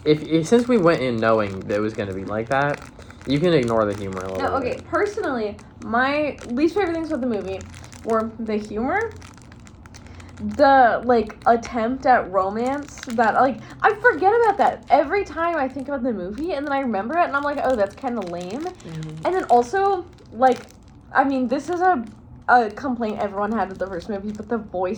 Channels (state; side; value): identical; both; correlation 1.00